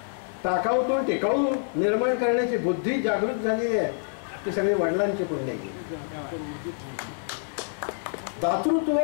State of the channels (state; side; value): silent; right; 60 dB below the other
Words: टाकाऊतून टिकाऊ निर्माण करण्याची बुद्धी जागृत झालेली आहे, ती सगळी वडिलांची पुण्य. दातृत्व